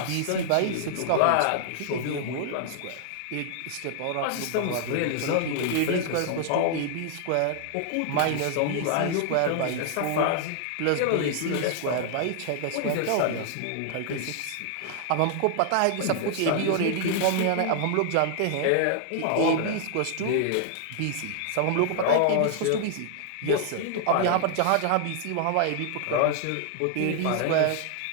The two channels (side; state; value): both; different; correlation 0.00